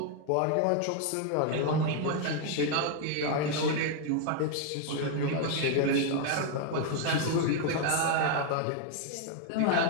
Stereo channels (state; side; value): different; both; correlation 0.00